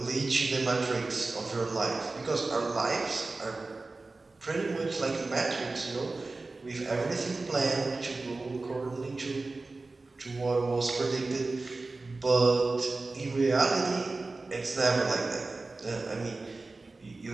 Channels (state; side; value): quieter; left; 3.5 dB